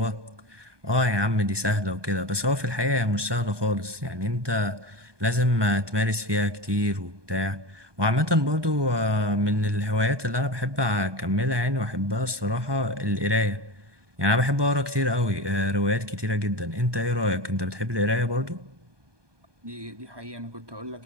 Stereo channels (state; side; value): late; left; 1.2 ms